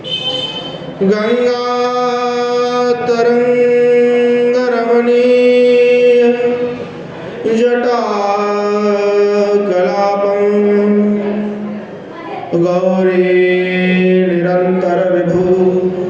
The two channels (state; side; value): identical; both; correlation 1.00